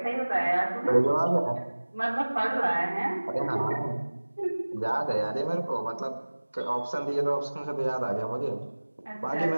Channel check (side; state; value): both; inverted; correlation -1.00